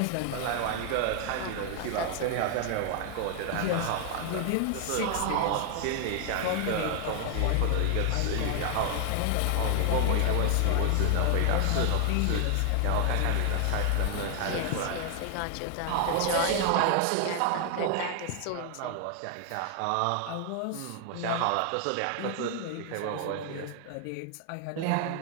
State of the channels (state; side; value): different; both; correlation 0.00